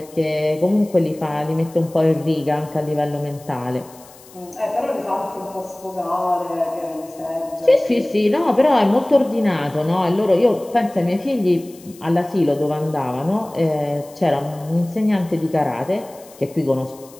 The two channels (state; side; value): noise; left; hiss, 23 dB below the sound